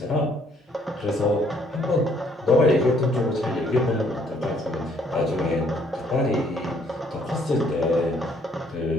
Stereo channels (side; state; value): both; normal; correlation 0.65